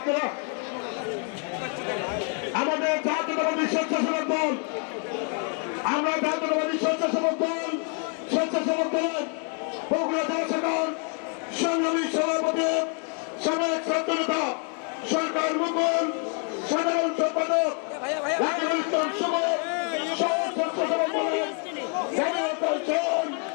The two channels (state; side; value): quieter; right; 38.8 dB